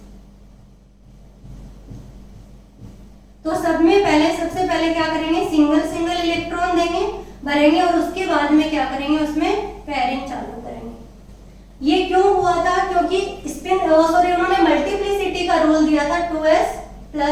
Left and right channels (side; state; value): both; identical; correlation 1.00